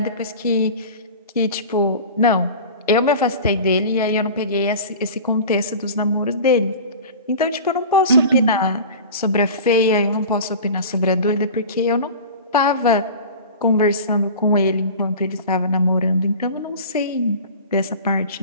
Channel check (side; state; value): both; inverted; correlation -0.35